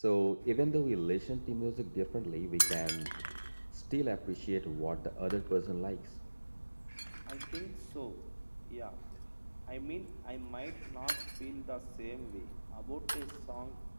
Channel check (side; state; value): both; inverted; correlation -1.00